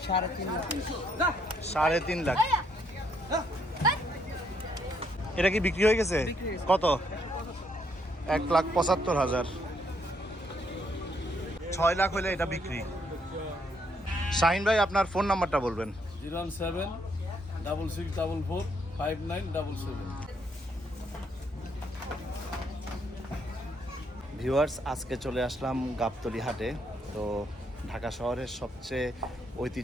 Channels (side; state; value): both; normal; correlation 0.72